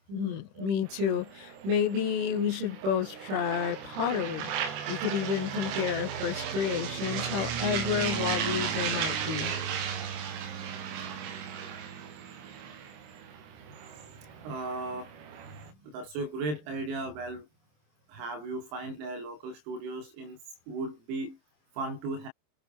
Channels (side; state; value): left; late; 27 ms